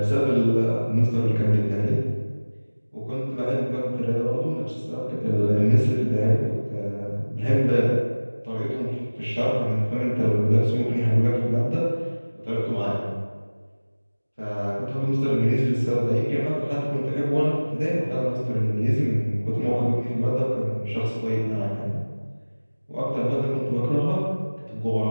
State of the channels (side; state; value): both; inverted; correlation -1.00